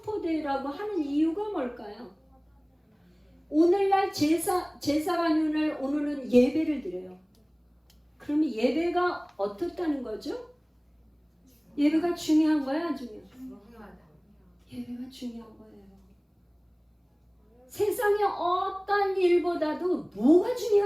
하는 이유가 뭘까요? 오늘날 제사가 오늘은 예배를 드려요. 그러면 예배가 어떻다는 거죠? 예배가 중요한 거야, 안 중요해? 예배가 중요한 거예요. 세상의 어떤 일보다도 뭐가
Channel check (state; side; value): identical; both; correlation 1.00